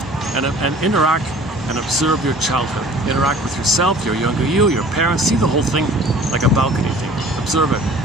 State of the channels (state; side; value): normal; both; correlation 0.48